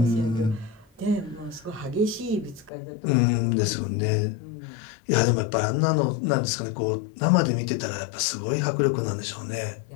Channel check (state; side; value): drops out; right; at 2.7 s